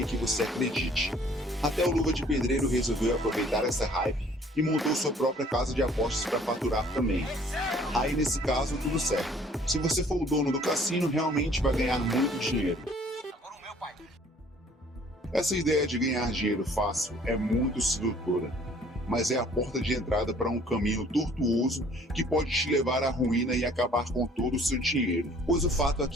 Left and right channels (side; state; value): both; normal; correlation 0.56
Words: que você acredite. Até o Luva de Pedreiro resolveu aproveitar essa hype e montou sua própria casa de apostas para faturar também. Aí nesse caso, tudo certo. Se você for o dono do cassino, realmente vai ganhar muito dinheiro. Essa ideia de ganhar dinheiro fácil é muito sedutora, mas é a porta de entrada para um caminho tortuoso que pode te levar à ruína e acabar com todo o seu dinheiro. Pois o fato é